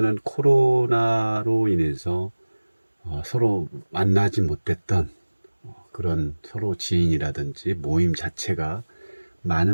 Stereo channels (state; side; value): inverted; both; correlation -1.00